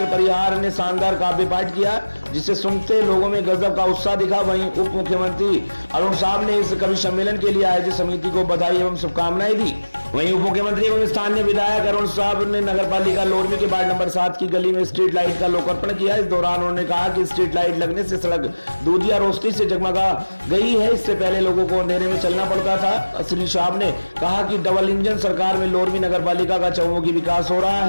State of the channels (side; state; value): both; inverted; correlation -1.00